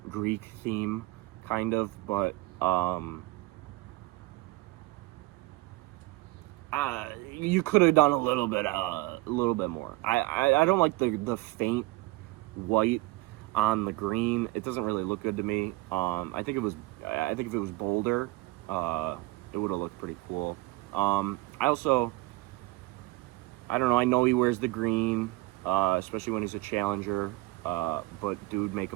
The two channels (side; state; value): left; quieter; 20.3 dB